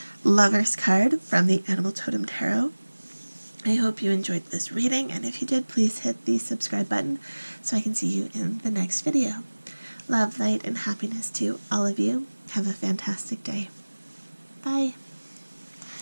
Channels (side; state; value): both; inverted; correlation -1.00